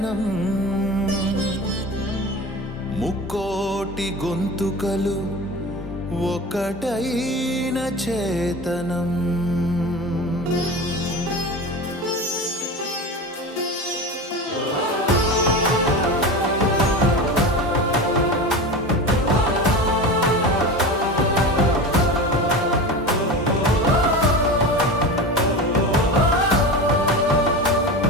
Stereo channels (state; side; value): normal; both; correlation 0.28